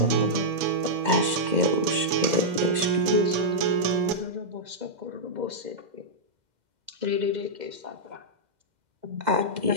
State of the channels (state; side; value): late; left; 2.1 ms